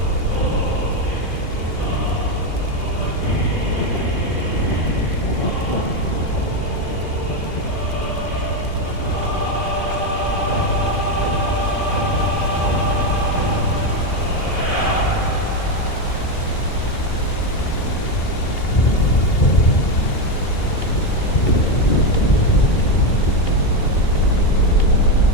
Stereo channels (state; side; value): late; right; 2.8 ms